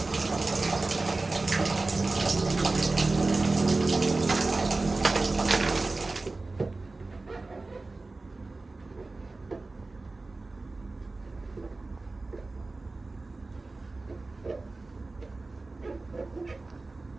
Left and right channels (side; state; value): left; quieter; 3.4 dB